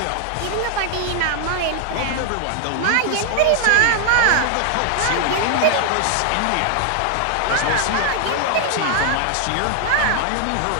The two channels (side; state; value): both; different; correlation 0.00